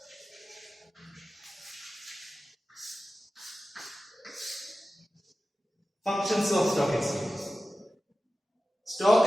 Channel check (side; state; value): both; normal; correlation 0.94